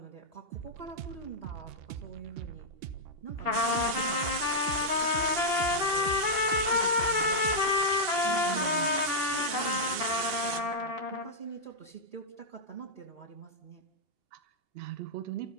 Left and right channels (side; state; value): left; late; 2.8 ms